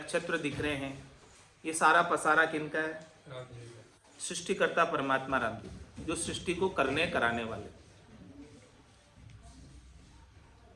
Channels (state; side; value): identical; both; correlation 1.00